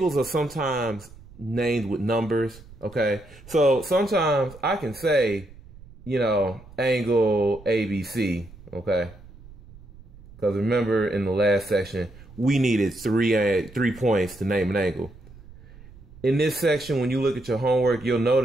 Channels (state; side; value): noise; right; rumble, 21 dB below the sound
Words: are sometimes named with numbers. Okay, so sometimes I can say, you know, angle ABC. Okay, because remember in the last section we needed three points to name an angle. In this section, when you look at your homework, you'll